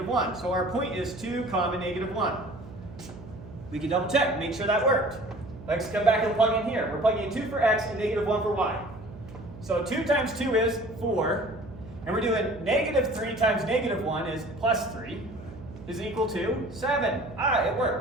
1. So our point is 2 comma negative 1. We can double check, make sure that worked. Let's come back and plug in here. We're plugging in 2 for x and negative 1 for y. So 2 times 2 is 4. And we're doing -3 times -1 is +3 is equal to 7. Ah, it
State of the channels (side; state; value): right; noise; hum, 16 dB below the sound